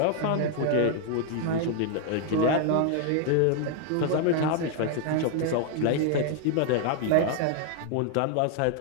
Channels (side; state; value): both; different; correlation 0.00